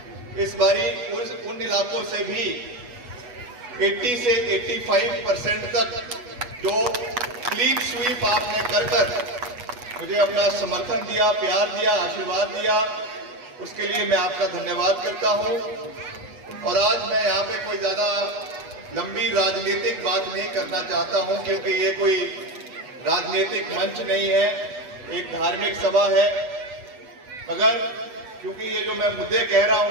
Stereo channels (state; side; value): late; left; 8.2 ms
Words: इस बारी उन इलाकों से भी 80 से 85% तक जो क्लीन स्वीप आपने कर मुझे अपना समर्थन दिया, प्यार दिया, आशीर्वाद दिया, उसके लिए मैं आपका धन्यवाद करता हूं। और आज मैं यहाँ पे कोई ज्यादा लंबी राजनीतिक बात नहीं करना चाहता हूं, क्योंकि ये कोई राजनीतिक मंच नहीं है, एक धार्मिक सभा है। मगर क्योंकि ये जो मैं मुद्दे कह रहा